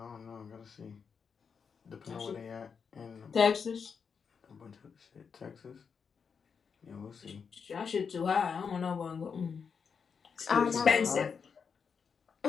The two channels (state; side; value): quieter; right; 6.1 dB